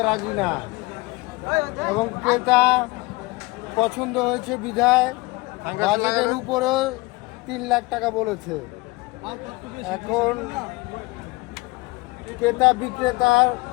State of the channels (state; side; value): quieter; right; 23.8 dB